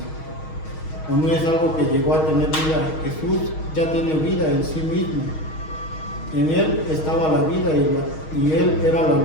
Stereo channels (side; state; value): right; late; 6.4 ms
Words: o no es algo que llegó a tener vida. Jesús ya tiene vida en sí mismo. En Él estaba la vida y Él era la